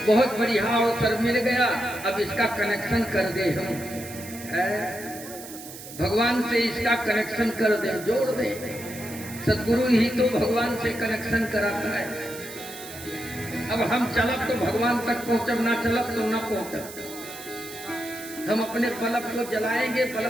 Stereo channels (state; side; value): noise; right; hiss, 14 dB below the sound